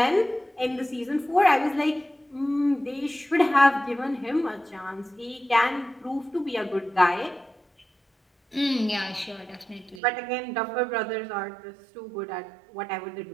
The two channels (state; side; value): drops out; left; at 10.0 s